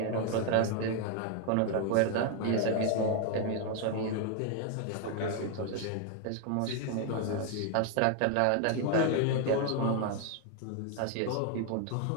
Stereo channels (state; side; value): different; both; correlation 0.01